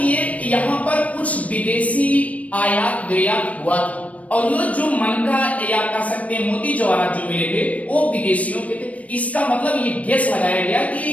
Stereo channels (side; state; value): right; late; 0.067 ms